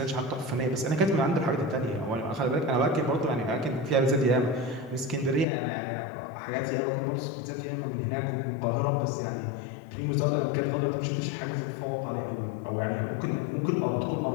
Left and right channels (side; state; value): right; drops out; at 5.5 s